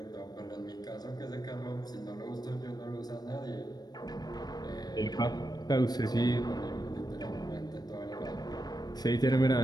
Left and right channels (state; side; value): late; right; 0.19 ms